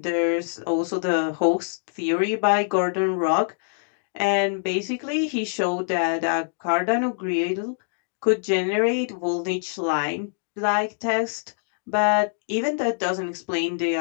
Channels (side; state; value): right; silent; digital silence